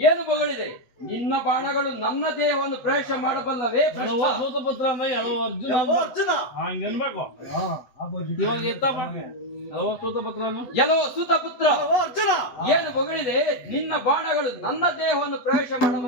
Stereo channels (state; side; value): late; right; 8.0 ms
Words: ಏನು ಬಗಳಿದೆ? ನಿನ್ನ ಬಾಣಗಳು ನನ್ನ ದೇಹವನ್ನು ಪ್ರವೇಶ ಮಾಡಬಲ್ಲವೇ? ಸೂತಪುತ್ರ ಅಂದ್ರೆ ಅರ್ಜುನ ಅರ್ಜುನ ಹಂಗನ್ಬೇಕು. ಇವಾಗ ಎತ್ತಪ್ಪ ಸೂತಪುತ್ರನು ಎಲ್ಲೋ ಸೂತಪುತ್ರ, ಅಲ್ಲವೋ ಅರ್ಜುನ, ಏನು ಹೊಗಳಿದೆ? ನಿನ್ನ ಬಾಣಗಳು ನನ್ನ ದೇಹವನ್ನು ಪ್ರವೇಶ